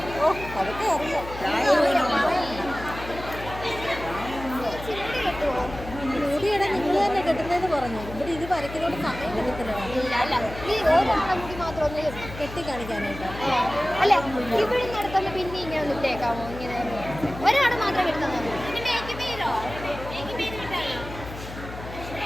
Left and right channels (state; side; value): noise; left; hum, 12 dB below the sound